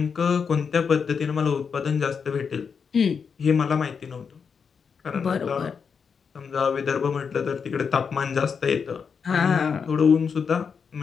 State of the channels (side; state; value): right; quieter; 6.1 dB